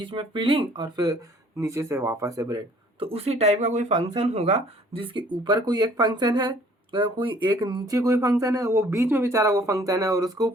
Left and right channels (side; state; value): both; normal; correlation 0.56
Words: में फिलिंग और फिर नीचे से वापस से ब्रेड, तो उसी टाइप का कोई फंक्शन होगा जिसके ऊपर कोई एक फंक्शन है, कोई एक नीचे कोई फंक्शन है, वो बीच में बेचारा वो फंक्शन है और उसके